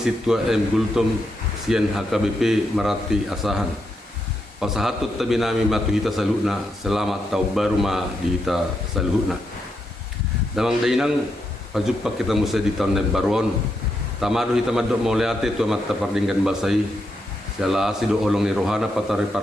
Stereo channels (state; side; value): normal; both; correlation 0.82